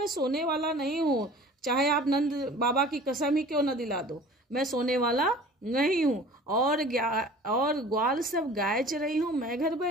सोने वाला नहीं हूँ, चाहे आप नंद बाबा की कसम ही क्यों न दिला दो, मैं सोने वाला नहीं हूँ। और ग्वाल सब गाय चराई हूँ, मैं घर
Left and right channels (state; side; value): normal; both; correlation 0.45